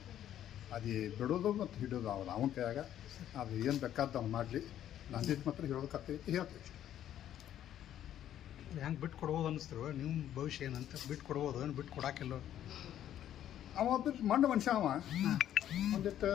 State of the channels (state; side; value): quieter; right; 11.2 dB